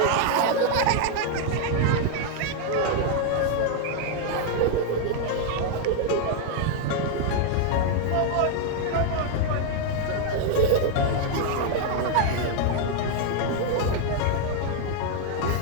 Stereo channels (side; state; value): both; different; correlation 0.00